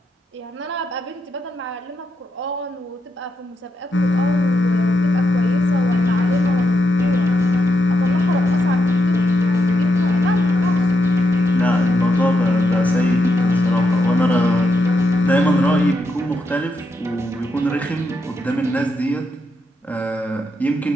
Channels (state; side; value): normal; both; correlation 0.82